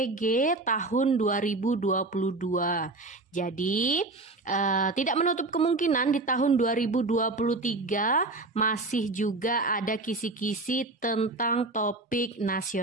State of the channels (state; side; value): quieter; left; 3.2 dB